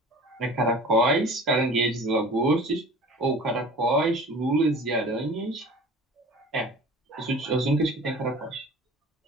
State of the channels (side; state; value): both; normal; correlation 0.42